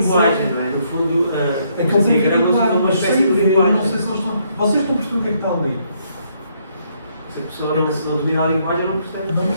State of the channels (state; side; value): inverted; both; correlation -0.72